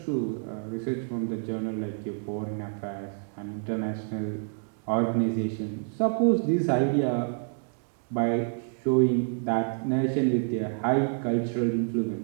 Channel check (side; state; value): left; silent; 59 dB below the other